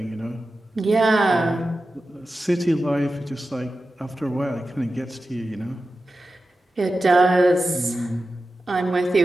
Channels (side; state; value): both; normal; correlation 0.93